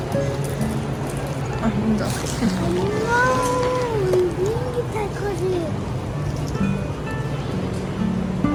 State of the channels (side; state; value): both; identical; correlation 1.00